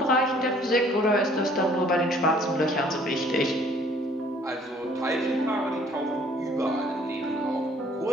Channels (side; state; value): both; normal; correlation 0.58